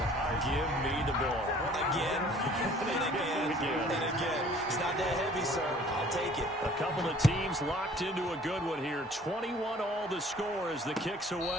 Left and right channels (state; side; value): normal; both; correlation 0.53